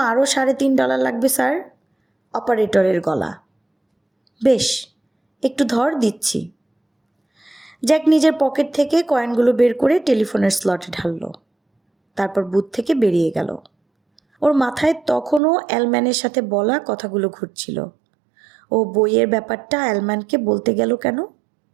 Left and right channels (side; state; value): left; drops out; at 15.4 s